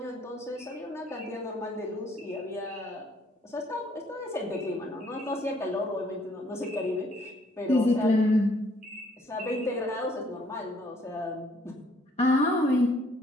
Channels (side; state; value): both; normal; correlation 0.64